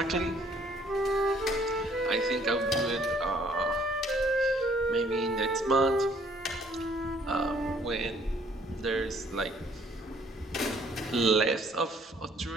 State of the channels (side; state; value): both; normal; correlation 0.61